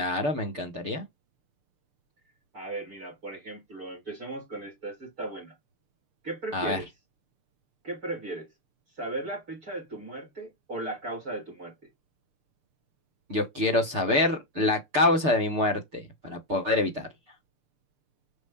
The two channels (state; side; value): late; left; 6.7 ms